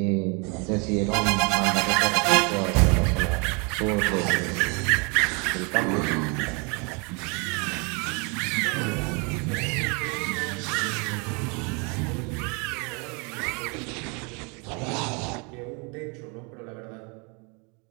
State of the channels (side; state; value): left; quieter; 32.0 dB